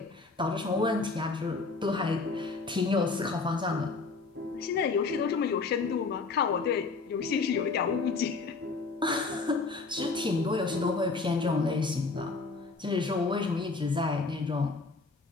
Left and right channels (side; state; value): right; quieter; 4.0 dB